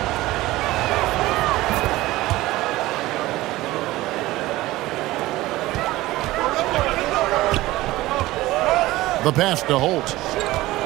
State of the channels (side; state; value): left; quieter; 17.9 dB